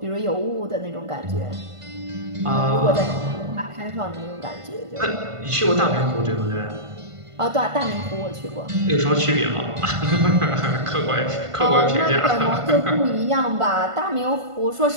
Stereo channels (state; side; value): late; left; 1.5 ms